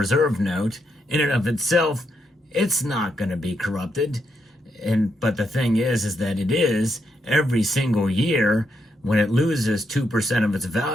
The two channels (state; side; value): normal; both; correlation 0.80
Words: note, in and of itself, it's not going to be corrupted. But the thing is that it is every single year when it loses 2% of its